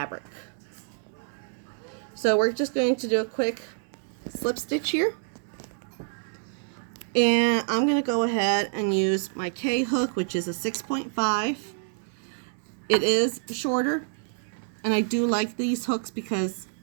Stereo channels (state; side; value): silent; left; digital silence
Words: So we're just going to do a quick slip stitch here. And I'm going to go ahead and use my K hook, which is a 6.5. It is shorter, and I do like these hooks because